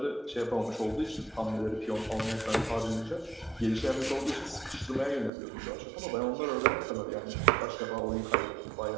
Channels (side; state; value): left; drops out; at 5.3 s